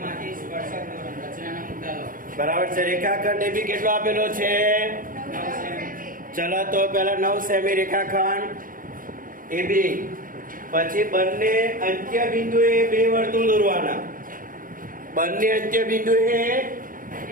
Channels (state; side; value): late; left; 0.40 ms